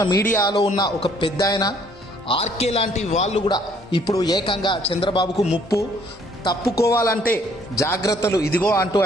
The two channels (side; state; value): both; normal; correlation 0.62